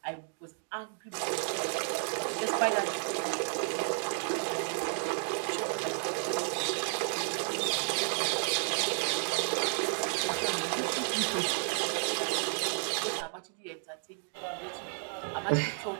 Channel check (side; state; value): left; silent; 56 dB below the other